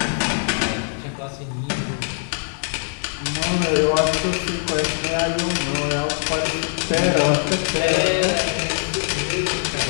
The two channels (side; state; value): right; silent; 64 dB below the other